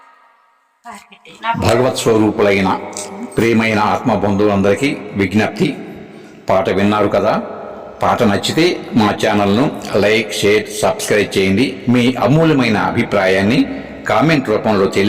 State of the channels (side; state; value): both; identical; correlation 1.00